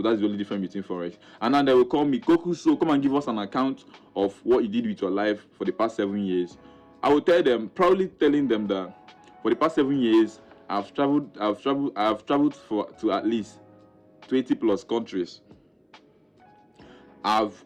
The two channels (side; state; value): both; identical; correlation 1.00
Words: the only difference between Forex. And then they will call me, Kokus, so come and give us an account of what you did with your life for the past 7 years. I will tell them, proudly telling them that for the past 7 years, I've traveled to at least 20 plus countries.